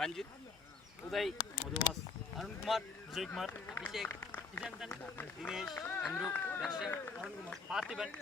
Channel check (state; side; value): quieter; right; 4.8 dB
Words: உதய், மதுவாஸ், அருண்குமார், விஜயகுமார், அபிஷேக், விஜயந்தன், தினேஷ், அம்ரு, தர்ஷன், அருண்குமார், பார்த்திபன்,